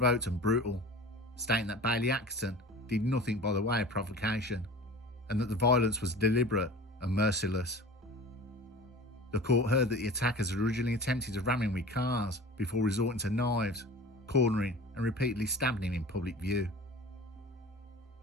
and brutal, stating that Bailey Atkinson did nothing by the way of provocation, and that the violence was deliberate and merciless. The court heard that the attackers had originally attempted to ram him with cars before resorting to knives, cornering and repeatedly stabbing him in public view.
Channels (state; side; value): normal; both; correlation 0.38